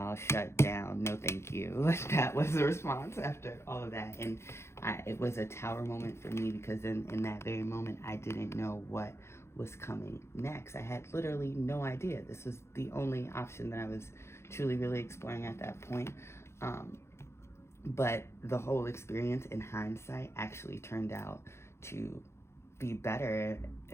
Shut down. No, thank you. That was the response after all of that. And it was a tower moment for me because in that very moment, I didn't know what was coming next. I had literally no idea. This was the only option that I was truly, really exploring at that point. But the whole experience in hindsight actually turned out to be better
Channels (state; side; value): late; right; 0.13 ms